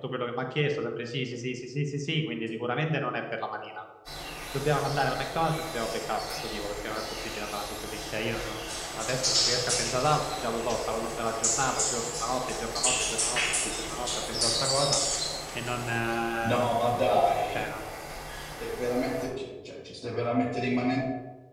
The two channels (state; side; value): identical; both; correlation 1.00